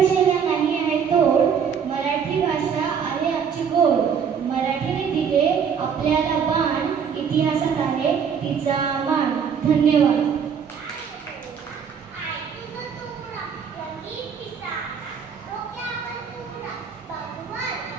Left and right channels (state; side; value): quieter; left; 7.1 dB